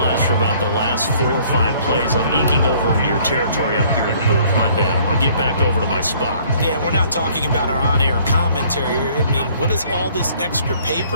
for about the last 4 or 5 plays, I'm eking over into your territory up here in the booth. My bad. I'm going to get back over to my spot. Yeah, we're not talking about our on-air commentary. I mean, what is all this extra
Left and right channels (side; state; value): both; inverted; correlation -0.59